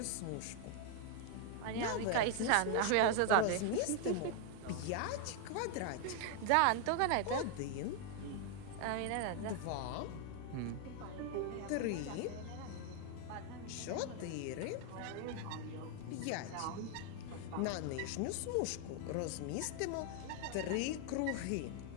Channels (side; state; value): both; different; correlation 0.00